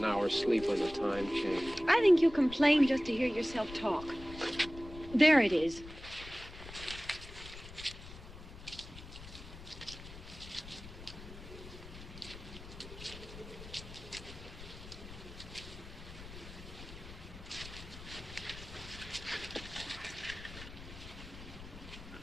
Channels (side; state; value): left; noise; rumble, 14 dB below the sound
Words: hour's sleep on the time change. I think you complain just to hear yourself talk. There it is.